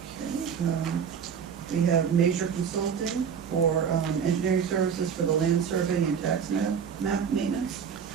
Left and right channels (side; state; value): left; quieter; 7.2 dB